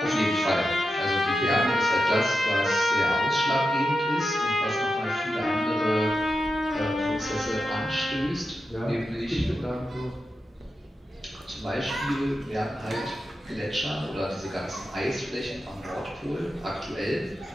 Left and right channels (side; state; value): both; normal; correlation 0.90